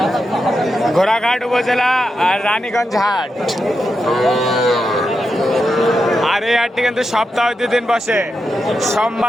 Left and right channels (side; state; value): both; normal; correlation 0.87